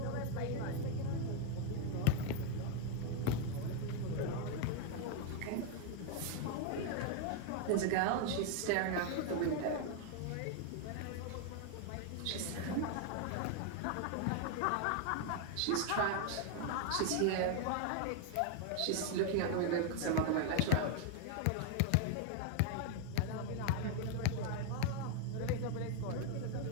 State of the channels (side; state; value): both; different; correlation 0.00